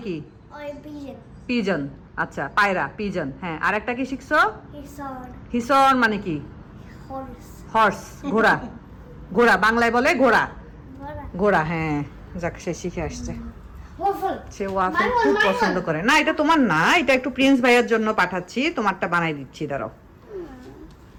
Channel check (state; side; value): identical; both; correlation 1.00